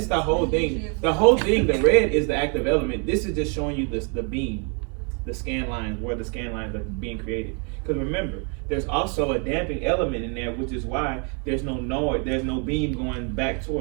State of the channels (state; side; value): quieter; left; 37.3 dB